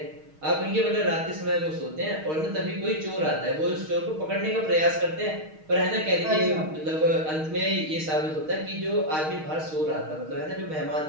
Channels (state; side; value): late; left; 6.4 ms